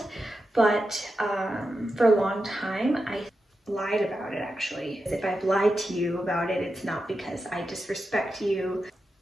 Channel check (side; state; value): both; normal; correlation 0.89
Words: but for a long time, I lied about it actually. If I've lied to you about it, it's not because I disrespect you.